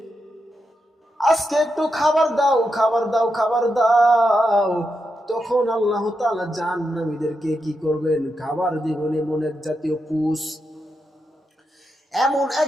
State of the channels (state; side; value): normal; both; correlation 0.86